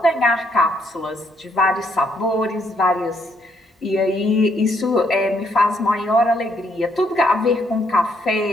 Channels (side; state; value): both; normal; correlation 0.72